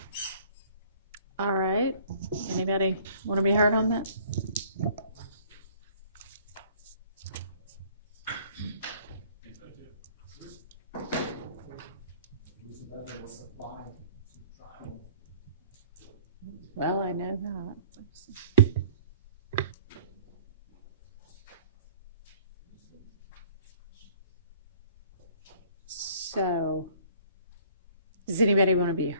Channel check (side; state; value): both; inverted; correlation -0.52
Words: All right. Anybody want to be heard on that? Well, I know that. So, does anybody want to be